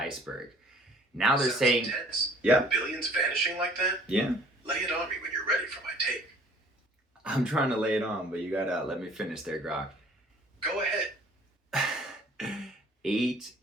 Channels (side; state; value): both; normal; correlation 0.54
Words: Now they're saying, intense. Yeah, Billions vanishing like that? Yeah. Lay it on me when you're ready for my take. I'm trying to lay it on, but you gotta let me finish there, Grok. Go ahead. 8